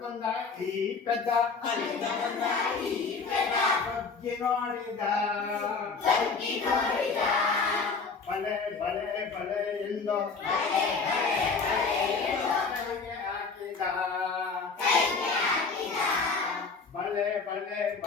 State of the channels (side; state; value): right; quieter; 4.7 dB